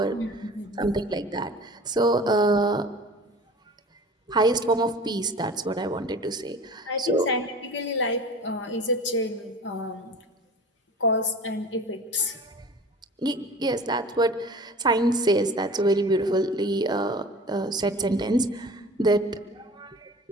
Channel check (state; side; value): normal; both; correlation 0.40